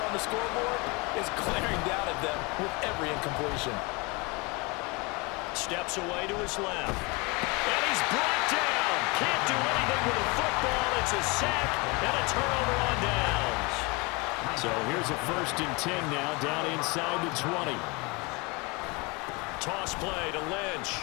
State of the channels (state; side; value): quieter; right; 27.6 dB